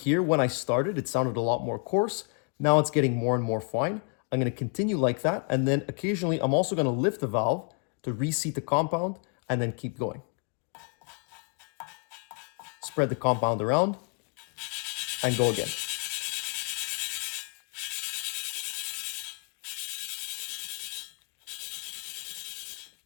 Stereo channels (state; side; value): quieter; right; 38.3 dB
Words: when I started, it sounded a lot more coarse. Now it's getting more and more fine. I'm going to continue like that, and then occasionally I'm also going to lift the valve to reseat the compound and then keep going. Spread the compound around and go again.